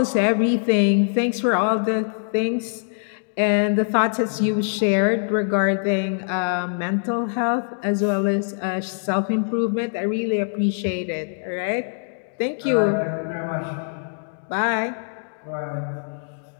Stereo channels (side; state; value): right; silent; digital silence